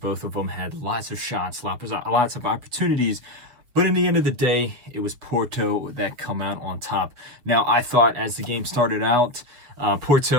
of them had lots of shots, lots of opportunities. But in the end of the day, it was Porto that come out on top. Now, I thought as the game started out,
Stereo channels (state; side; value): late; left; 7.2 ms